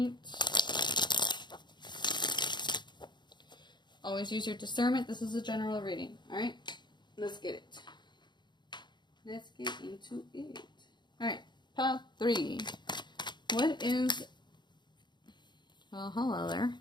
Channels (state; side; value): late; right; 0.22 ms